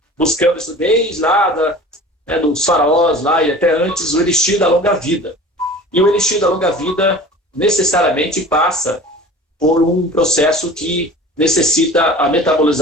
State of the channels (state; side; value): normal; both; correlation 0.41